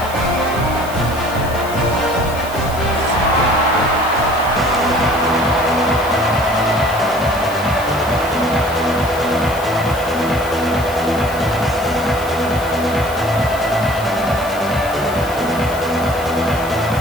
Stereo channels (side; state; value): left; noise; hiss, 15 dB below the sound